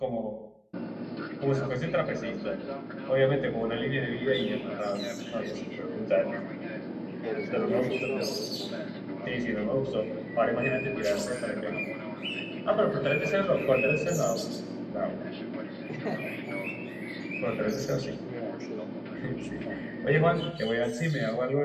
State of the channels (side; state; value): both; identical; correlation 1.00